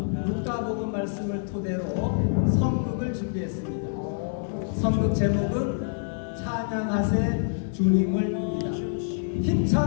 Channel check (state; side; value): silent; right; 61 dB below the other